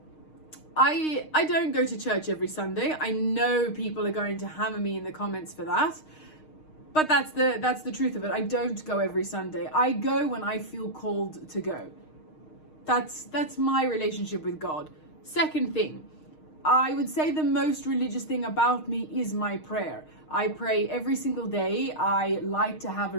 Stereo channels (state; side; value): late; right; 6.5 ms